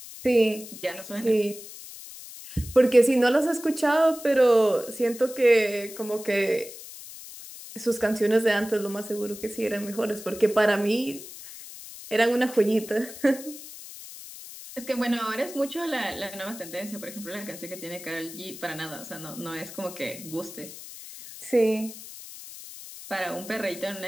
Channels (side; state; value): left; noise; hiss, 14 dB below the sound